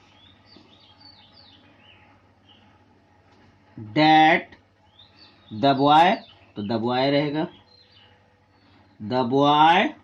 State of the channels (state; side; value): identical; both; correlation 1.00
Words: that the boy, तो द बॉय रहेगा, the boy